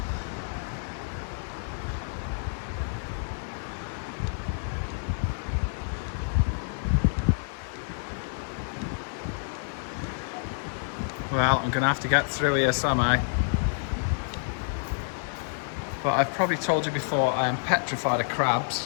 Well, I'm going to have to get through here somehow. But I've probably told you before, I am petrified of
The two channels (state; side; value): silent; right; 59 dB below the other